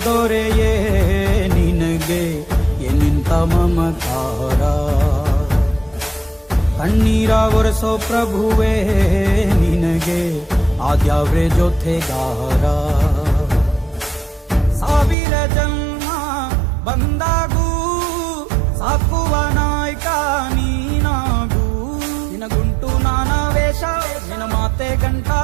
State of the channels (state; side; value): drops out; left; at 15.2 s